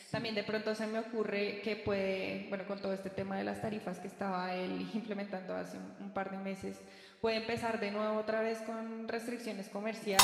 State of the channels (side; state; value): both; identical; correlation 1.00